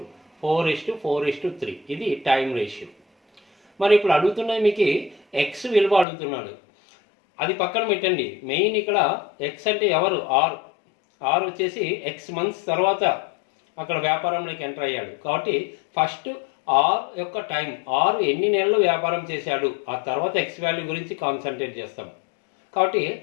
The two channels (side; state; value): right; drops out; at 6.1 s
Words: 4:4:3 ఇది టైం రేషియో. మరి ఇప్పుడు అడుగుతున్నది మీకు ఎక్స్ విలువ అడుగుతున్నాడు, అది పక్కన పెట్టండి. మెయిన్ ఇక్కడ ఎక్స్ అంటే ఎవరు, ఆర్ వచ్చేసి ఎక్స్ మంత్స్ తర్వాత అక్కడ వ్యాపారంలోకి ఎంటర్ అయ్యాడు. కాబట్టి ఫస్ట్ ఆర్ యొక్క టైం, ఆర్ ఎన్ని నెలలు వ్యాపారం చేశాడు, ఆ తర్వాత ఎక్స్ వాల్యూ గురించి కాన్సన్ట్రేట్ చేస్తాం. కాబట్టి